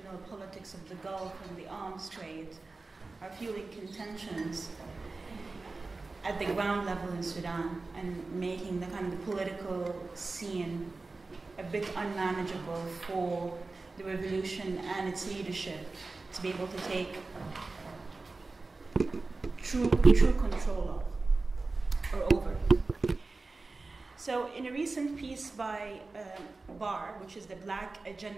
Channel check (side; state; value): left; quieter; 3.6 dB